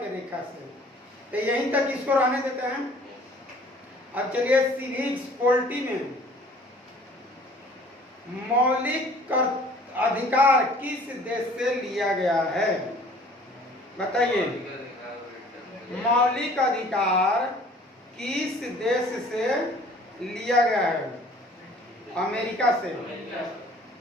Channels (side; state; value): both; normal; correlation 0.52